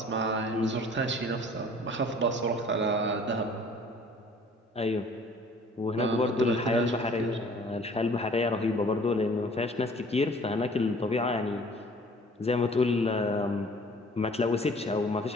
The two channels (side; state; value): both; normal; correlation 0.52